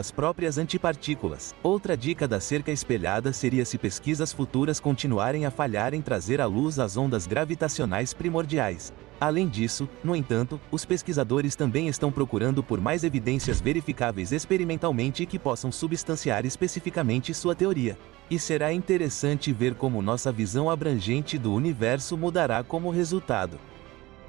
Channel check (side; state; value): left; quieter; 19.8 dB